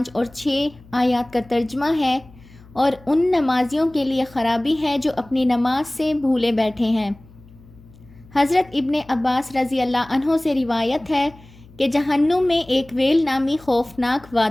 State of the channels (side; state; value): left; noise; hum, 24 dB below the sound